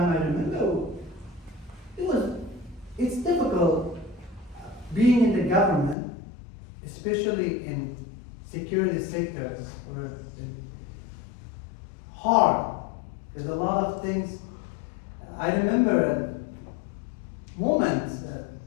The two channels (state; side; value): drops out; right; at 6.0 s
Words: I remember it's difficult being in the government, especially in security sectors, or hard. There's a lot of things. I remember moments.